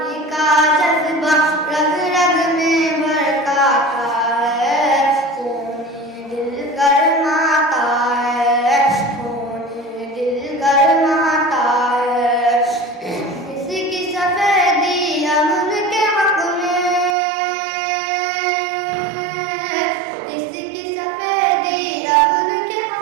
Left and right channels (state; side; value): drops out; left; at 17.2 s